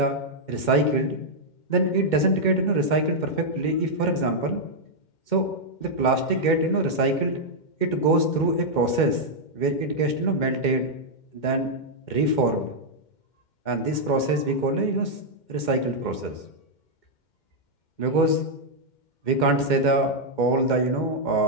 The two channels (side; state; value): right; late; 2.1 ms